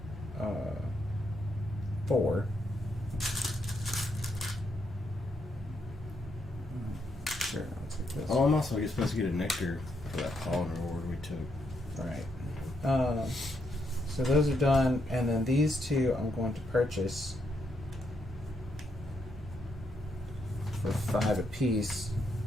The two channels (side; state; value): both; normal; correlation 0.78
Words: 4. Oh, I'm also supposed to get a nectar for that pollen reward we took. Right. So those are done, and then these two I'm going to purchase for 5 apiece.